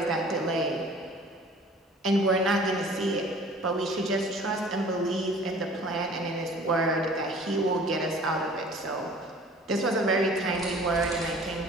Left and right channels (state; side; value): normal; both; correlation 0.49